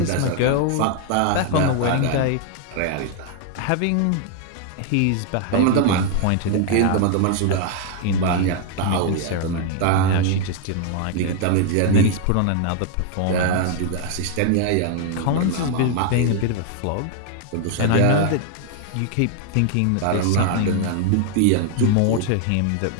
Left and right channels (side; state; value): both; different; correlation 0.00